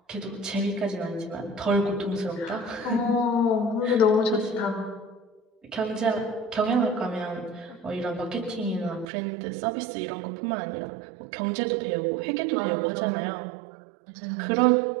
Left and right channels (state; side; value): drops out; left; at 9.1 s